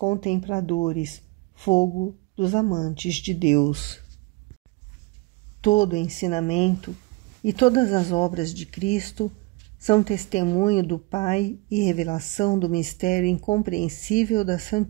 fogo dos amantes de Deus. Todo o ensinamento e todas as obras de Cristo são testemunho do Pai e revelação do mistério incompreensível da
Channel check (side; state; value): left; quieter; 23.8 dB